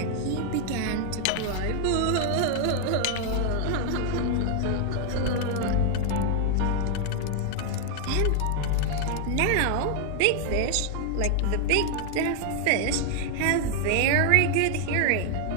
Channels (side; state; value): both; different; correlation 0.00